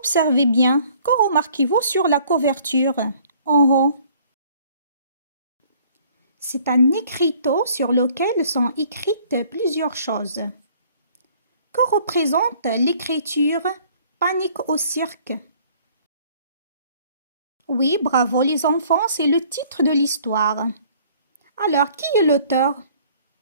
bien, que remarquez-vous sur la couverture en haut? C'est un écriteau sur lequel sont écrites plusieurs choses. Que représente l'écriture « Panique au cirque » ? Oui, bravo les enfants, c'est le titre de l'histoire. Alors, qui est l'auteur?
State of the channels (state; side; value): inverted; both; correlation -0.57